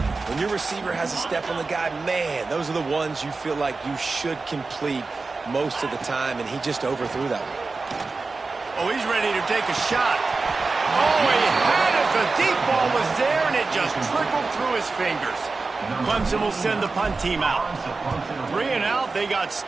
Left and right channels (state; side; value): quieter; left; 3.9 dB